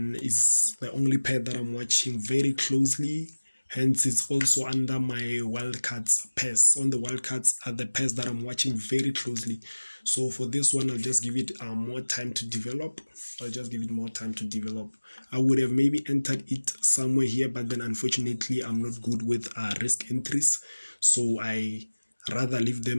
it's the only pair that I'm watching very closely. Hence, it's also under my wildcards pairs. On the wildcards are the pairs that I'm watching very closely. So for this one, I'll just give it more time to develop. I would have maybe entered it somewhere here, but then unfortunately, I'm not good with risk entries. So I rather leave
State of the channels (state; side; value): inverted; both; correlation -1.00